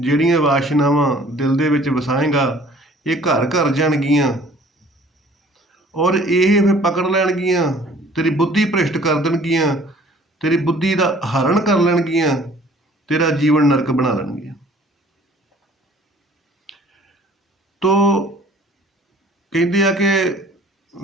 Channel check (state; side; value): normal; both; correlation 0.53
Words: ਵਾਸ਼ਨਾਵਾਂ ਦਿਲ ਦੇ ਵਿੱਚ ਵਸਾਏਗਾ, ਇਹ ਘਰ ਘਰ ਜਾਣਗੀਆਂ ਔਰ ਇਹ ਫਿਰ ਪਕੜ ਲੈਣਗੀਆਂ, ਤੇਰੀ ਬੁੱਧੀ ਭ੍ਰਿਸ਼ਟ ਕਰ ਦੇਣਗੀਆਂ, ਤੇਰੀ ਬੁੱਧੀ ਦਾ ਹਰਨ ਕਰ ਲੈਣਗੀਆਂ, ਤੇਰਾ ਜੀਵਨ ਨਰਕ ਬਣਾ ਲੈਣਗੀਆਂ। ਤੋ ਕਹਿੰਦੇ ਆ ਕਿ